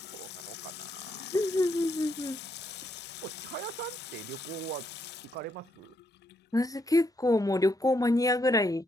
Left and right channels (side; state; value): both; normal; correlation 0.76